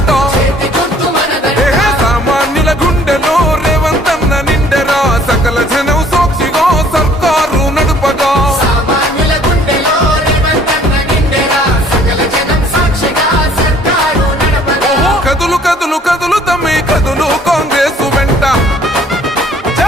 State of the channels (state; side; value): normal; both; correlation 0.57